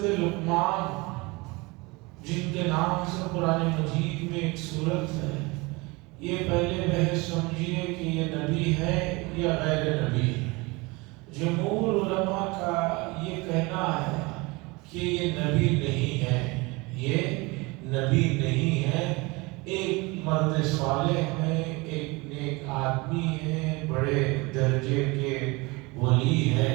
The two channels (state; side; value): quieter; left; 25.1 dB